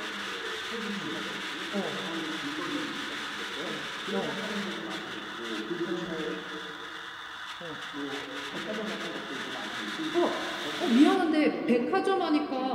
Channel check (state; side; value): identical; both; correlation 1.00